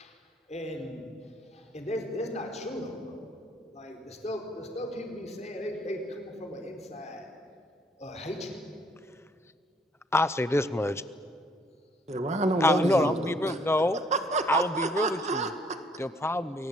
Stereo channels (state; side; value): normal; both; correlation 0.64